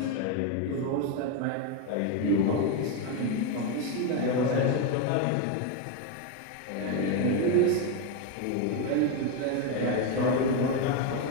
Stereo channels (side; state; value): both; different; correlation 0.03